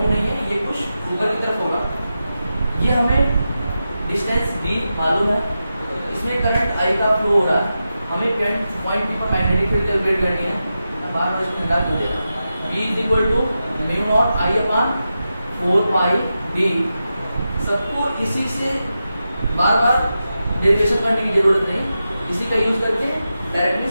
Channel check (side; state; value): both; inverted; correlation -0.90